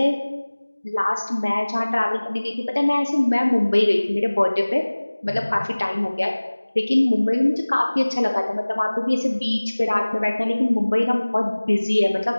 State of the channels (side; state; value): both; inverted; correlation -1.00